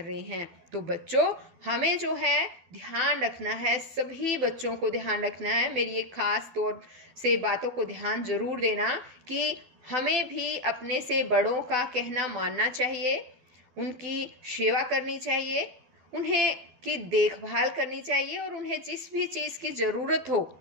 रहे हैं। तो बच्चों हमें जो है ध्यान रखना है, सभी बच्चों को ध्यान रखना है। मेरी एक खास तौर से बातों को ध्यान जरूर देना कि हमें भी अपने से बड़ों का कहना मानना चाहिए, उनकी सेवा करनी चाहिए, उन्हें की देखभाल करनी चाहिए और उन्हें जिस भी चीज की जरूरत हो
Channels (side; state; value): left; late; 12 ms